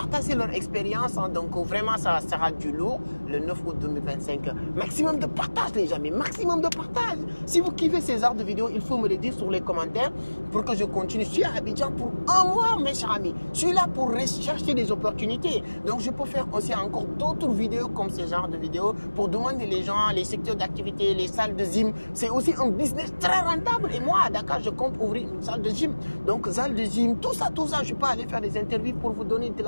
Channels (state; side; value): inverted; both; correlation -1.00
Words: leur expérience. Hein. Donc vraiment, ça sera du lourd le 9 août 2025. Maximum de partage, les amis, maximum de partage. Si vous kiffez ces genres de vidéos, il faut me le dire sur les commentaires pour que je continue. Je suis à Abidjan pour un mois, mes chers amis. Je suis là pour rechercher des opportunités. Donc je peux faire aussi encore d'autres vidéos comme ce genre de vidéos pour demander les gens, les secteurs d'activité, les salles de gym. C'est aussi un business très rentable. Et moi, à Dakar, je compte ouvrir une salle de gym. Donc, salle de gym, tout ça, je peux aller faire des interviews pour vous donner de